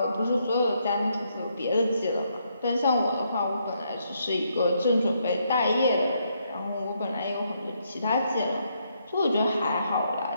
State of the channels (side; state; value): both; inverted; correlation -0.75